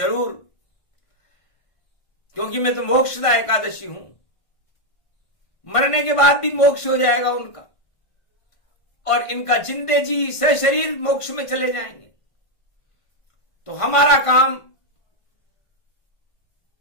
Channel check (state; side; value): late; right; 1.5 ms